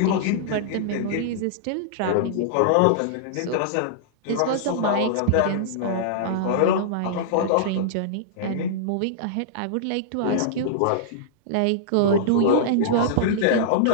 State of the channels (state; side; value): different; both; correlation -0.02